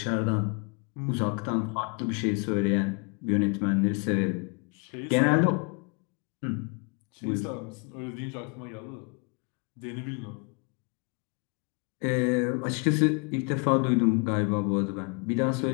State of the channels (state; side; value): quieter; right; 33.5 dB